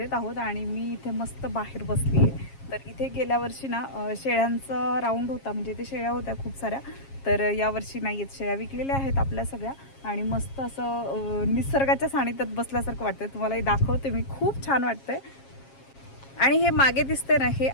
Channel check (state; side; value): late; right; 7.4 ms